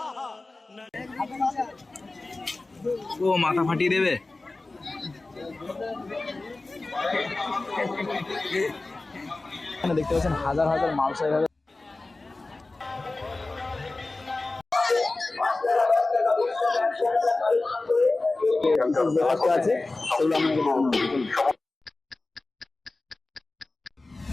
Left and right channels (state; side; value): quieter; right; 3.2 dB